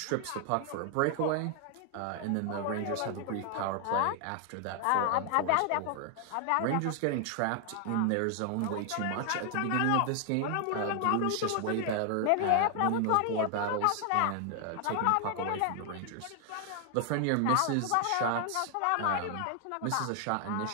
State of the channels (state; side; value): different; both; correlation 0.00